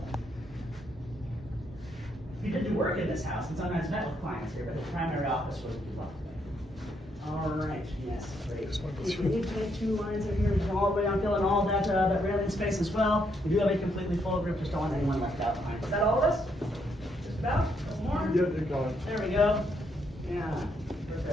He did do work in this house and sometimes met with clients here, but his primary office was the law. All right, yes, great. If we need to make 2 lines in here, we can all the way on filling all that railing space as well. We do have a completely full group, just don't want anyone left out behind. Is that all of us? Just about? A couple more? Yeah, they got it. There we go. Yeah,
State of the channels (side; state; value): both; normal; correlation 0.75